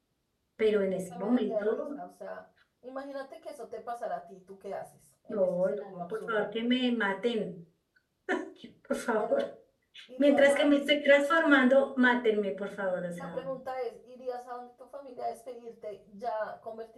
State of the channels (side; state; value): both; identical; correlation 1.00